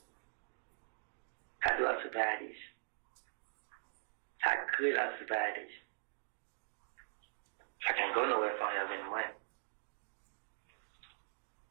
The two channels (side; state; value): left; silent; digital silence